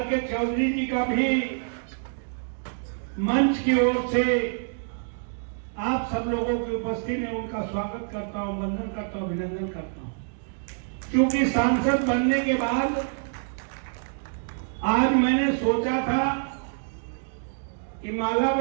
के चौधरी जी का भी मंच की ओर से आप सब लोगों की उपस्थिति में उनका स्वागत करता हूं, वंदन करता हूं, अभिनंदन करता हूं। क्योंकि सांसद बनने के बाद आज मैंने सोचा था कि माला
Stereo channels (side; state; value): left; silent; digital silence